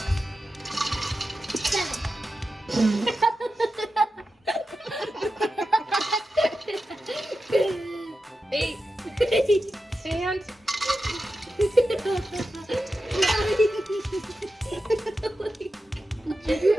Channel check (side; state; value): both; normal; correlation 0.91